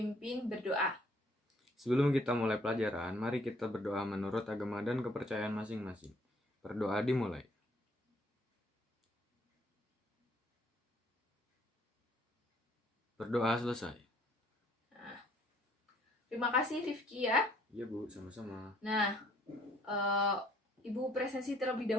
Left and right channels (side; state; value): both; normal; correlation 0.63